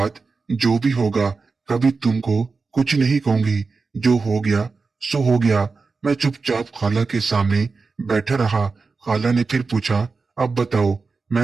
जो भी होगा कभी तुमको कुछ नहीं कहूंगी। जो हो गया सो हो गया। मैं चुपचाप खाला के सामने बैठा रहा। खाला ने फिर पूछा, अब बताओ।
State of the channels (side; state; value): left; quieter; 4.3 dB